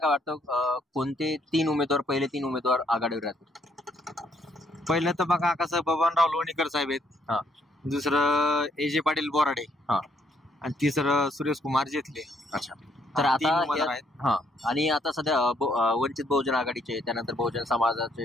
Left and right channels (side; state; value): both; normal; correlation 0.70